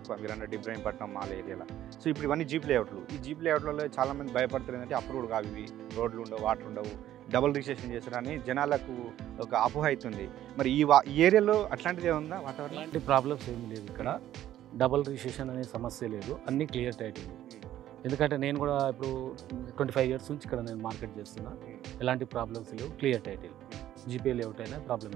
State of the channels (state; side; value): quieter; left; 12.6 dB